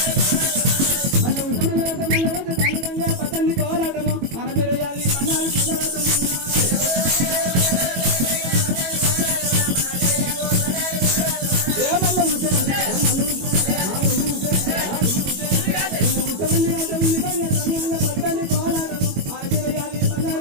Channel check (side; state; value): left; late; 22 ms